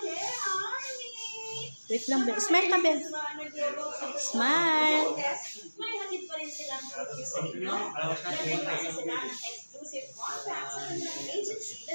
Wait lang, Bel. Smile ka, Bel. Smile. May hatid pa rin silang review sa inyo. Nagpapasa sila ng exclusive contracts sa kanilang agency na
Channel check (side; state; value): both; inverted; correlation -1.00